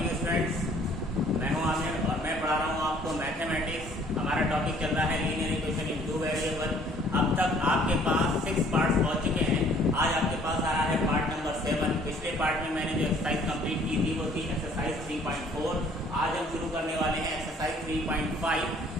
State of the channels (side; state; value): both; normal; correlation 0.58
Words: students, मैं हूं आमिर और मैं पढ़ा रहा हूं आपको मैथमेटिक्स। हमारा टॉपिक चल रहा है linear equation in two variable. अब तक आपके पास 6 पार्ट्स पहुंच चुके हैं। आज आपके पास आ रहा है पार्ट नंबर 7। पिछले पार्ट में मैंने जो एक्सरसाइज कंप्लीट की थी वो थी एक्सरसाइज 3.4। आज हम शुरू करने वाले हैं एक्सरसाइज 3.5।